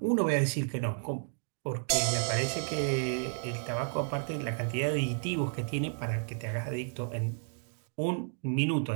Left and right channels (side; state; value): left; silent; 56 dB below the other